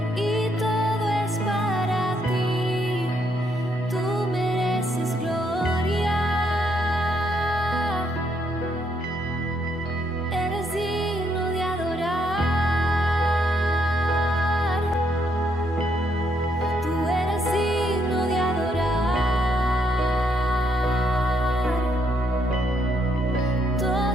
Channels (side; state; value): both; normal; correlation 0.74